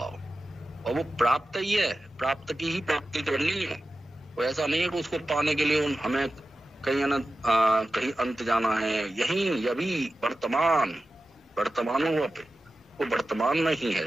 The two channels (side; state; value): both; normal; correlation 0.93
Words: और वो प्राप्त ही है, प्राप्त की ही प्राप्ति करनी है। वो ऐसा नहीं है कि उसको पाने के लिए हमें कहीं अंत जाना है। यही अभी वर्तमान हुआ पे वो वर्तमान में ही है।